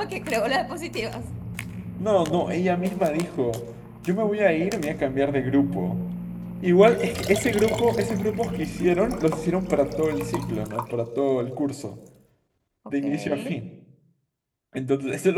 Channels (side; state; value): both; identical; correlation 1.00